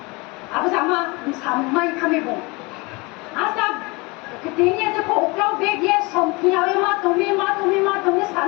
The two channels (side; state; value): right; quieter; 26.0 dB